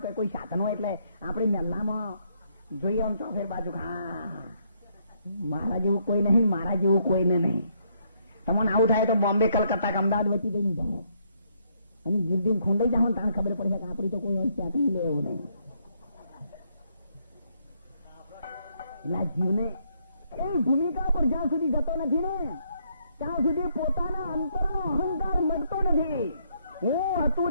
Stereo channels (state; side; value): inverted; both; correlation -0.72